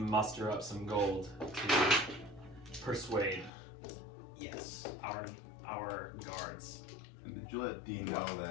up some gold to persuade Yes. our guards. And did you let Dean know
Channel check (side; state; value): right; drops out; at 3.5 s